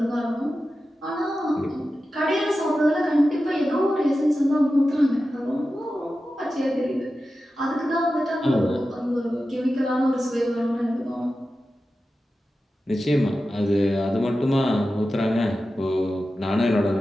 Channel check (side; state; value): both; normal; correlation 0.93